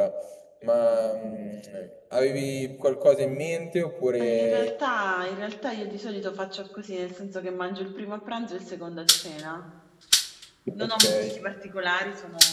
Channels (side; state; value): both; identical; correlation 1.00